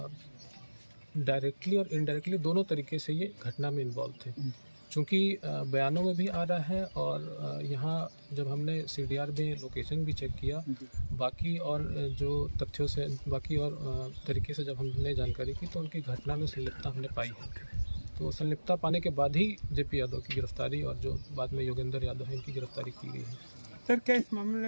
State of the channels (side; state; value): both; inverted; correlation -1.00